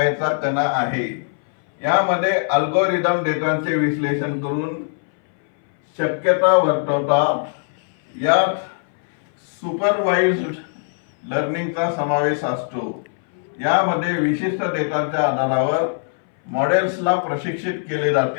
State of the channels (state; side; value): silent; right; 61 dB below the other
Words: चा कणा आहे. यामध्ये अल्गोरिदम डेटाचे विश्लेषण करून शक्यता वर्तवतात. यात सुपरवाइज्ड लर्निंगचा समावेश असतो. यामध्ये विशिष्ट डेटाच्या आधारावर मॉडेल्सला प्रशिक्षित केले